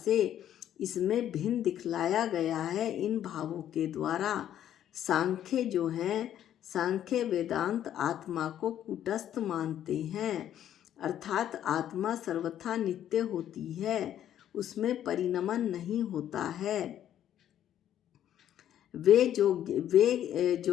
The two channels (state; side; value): quieter; right; 10.9 dB